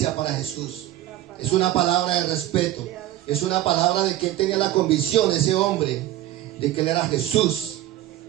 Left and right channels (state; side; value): quieter; left; 14.2 dB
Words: para Jesús. Es una palabra de respeto. Es una palabra de que él tenía la convicción, ese hombre, de que él era Jesús.